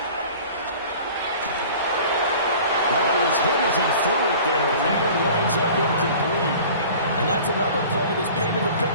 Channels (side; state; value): both; inverted; correlation -0.44